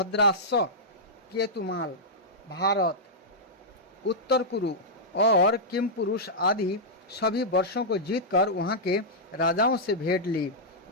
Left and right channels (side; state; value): both; normal; correlation -0.10